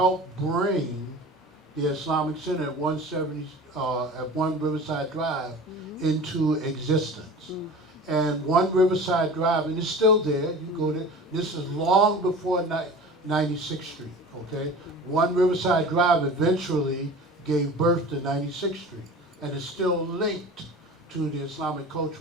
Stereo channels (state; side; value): normal; both; correlation 0.38